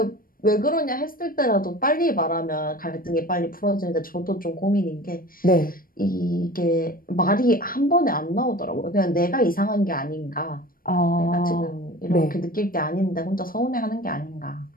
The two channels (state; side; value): late; right; 0.41 ms